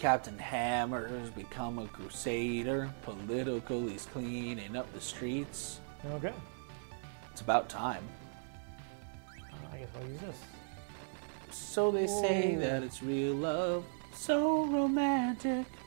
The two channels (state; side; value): silent; left; 53 dB below the other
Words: Hammer's become a crusader. Political, he's cleaning up the streets. Okay. It's about time. I guess I'll use this. So they say Whoa. that it's real love. So romantic.